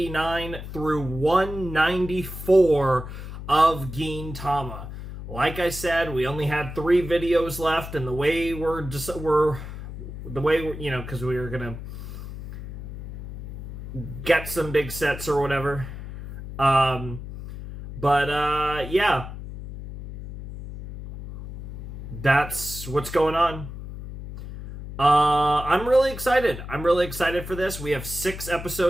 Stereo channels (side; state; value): left; noise; hum, 10 dB below the sound